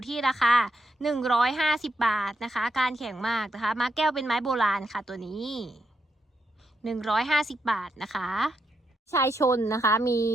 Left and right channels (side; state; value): both; normal; correlation 0.82